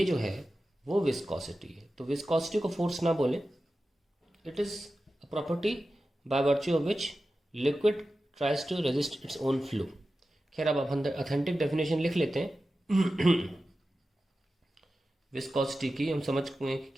जो है वो विस्कोसिटी है। तो विस्कोसिटी को फोर्स ना बोले, it is a property by virtue of which liquid tries to resist its own flow. खैर अब ऑथेंटिक डेफिनेशन लिख लेते हैं विस्कोसिटी की, हम समझ गए कि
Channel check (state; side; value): normal; both; correlation 0.93